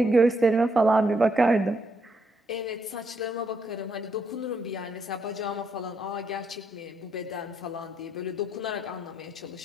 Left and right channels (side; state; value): both; normal; correlation 0.76